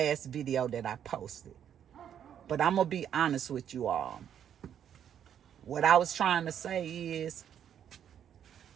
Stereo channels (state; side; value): quieter; left; 9.3 dB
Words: video that I posted. But I'm going to be honest with you all. What I was trying to say is,